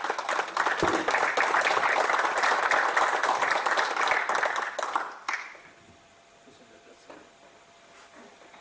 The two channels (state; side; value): identical; both; correlation 1.00